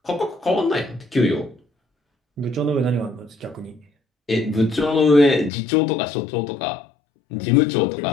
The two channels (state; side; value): drops out; right; at 5.5 s